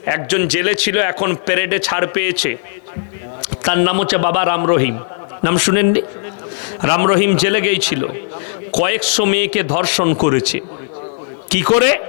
একজন জেলে ছিল, এখন প্যারেডে ছাড় পেয়েছে, তার নাম হচ্ছে বাবা রাম রহিম। নাম শুনেননি? রাম রহিম জেলে গিয়েছিল, কয়েকশো মেয়েকে ধর্ষণ করেছে। কি করে?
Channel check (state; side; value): silent; right; 68 dB below the other